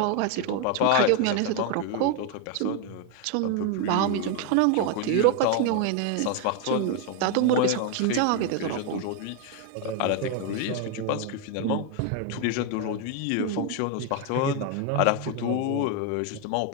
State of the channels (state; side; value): different; both; correlation 0.01